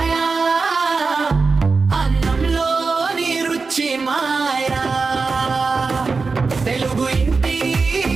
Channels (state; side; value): quieter; left; 4.4 dB